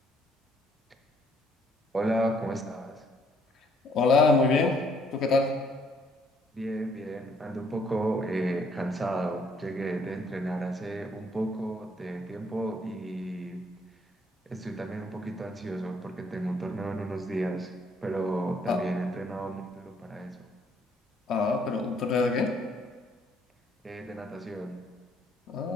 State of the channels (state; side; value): normal; both; correlation 0.66